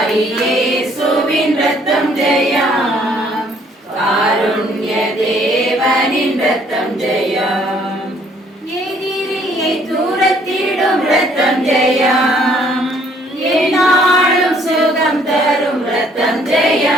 இயேசுவின் ரத்தம் ஜெயம், காருண்ய தேவனின் ரத்தம் ஜெயம், எதிரியை தூரத்திடும் ரத்தம் ஜெயம், என்னாலும் சுகம் தரும் ரத்தம்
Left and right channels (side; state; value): both; normal; correlation 0.63